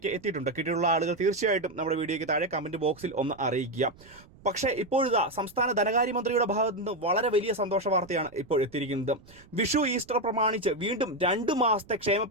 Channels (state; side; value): noise; right; rumble, 25 dB below the sound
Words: എത്തിയിട്ടുണ്ട്. കിട്ടിയിട്ടുള്ള ആളുകൾ തീർച്ചയായിട്ടും നമ്മുടെ വീഡിയോയ്ക്ക് താഴെ കമന്റ് ബോക്സിൽ ഒന്ന് അറിയിക്കുക. പക്ഷേ ഇപ്പോഴിതാ സംസ്ഥാന ധനകാര്യമന്ത്രിയുടെ ഭാഗത്തു നിന്ന് വളരെ വലിയ സന്തോഷ വാർത്തയാണ് ഇപ്പോൾ എത്തിയിരിക്കുന്നത്. വിഷു ഈസ്റ്റർ പ്രമാണിച്ച് വീണ്ടും 2 മാസത്തെ ക്ഷേമ